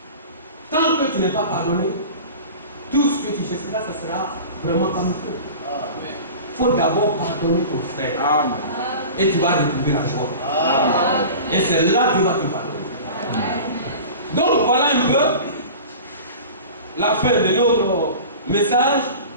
Tant que tu n'es pas pardonné, tout ce que tu feras, ce sera vraiment comme il faut. Il faut d'abord pardonner ton frère. Amen. Et tu vas retrouver la joie. Amen. Et c'est là que tu vas te pardonner. Donc voilà un peu la fin de notre message.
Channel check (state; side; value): inverted; both; correlation -0.37